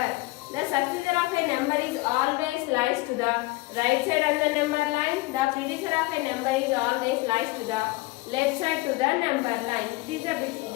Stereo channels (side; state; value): right; quieter; 22.0 dB